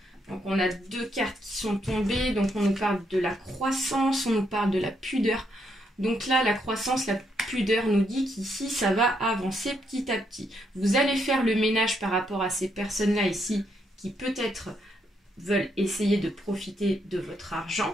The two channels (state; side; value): normal; both; correlation 0.76